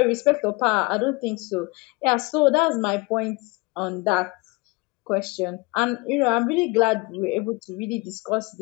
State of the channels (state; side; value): quieter; right; 24.6 dB